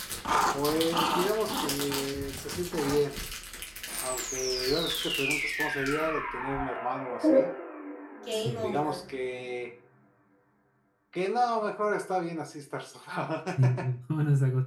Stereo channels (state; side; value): identical; both; correlation 1.00